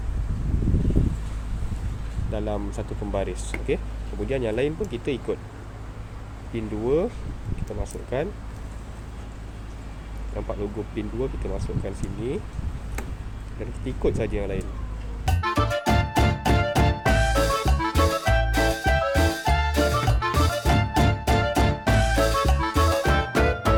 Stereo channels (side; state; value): both; identical; correlation 1.00